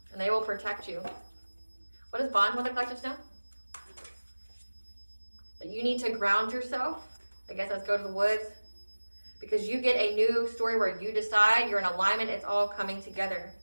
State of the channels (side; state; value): both; inverted; correlation -1.00